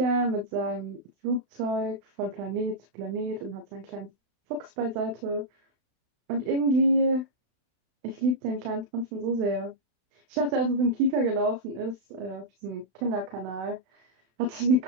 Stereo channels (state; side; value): late; left; 32 ms